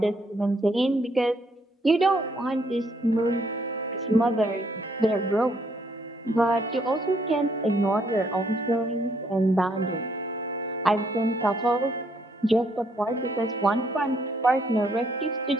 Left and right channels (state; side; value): normal; both; correlation 0.70